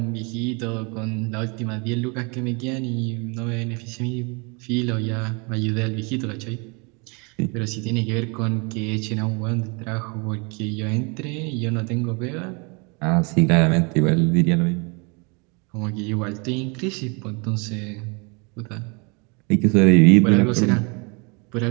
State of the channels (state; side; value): quieter; left; 31.8 dB